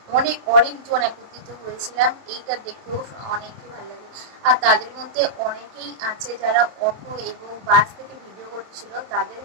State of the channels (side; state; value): left; late; 26 ms